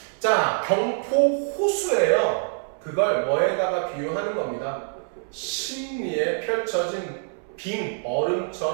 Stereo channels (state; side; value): silent; left; 62 dB below the other